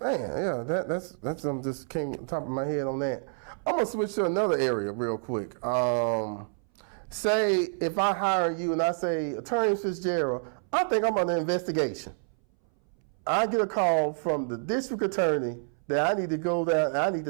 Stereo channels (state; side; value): silent; left; 59 dB below the other